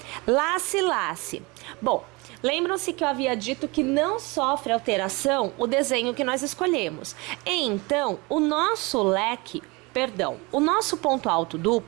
Lace, lace. Bom, lembram-se que eu havia dito que não sofre alteração o desenho que nós escolhemos. Então, o nosso ponto alto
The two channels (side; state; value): left; quieter; 26.0 dB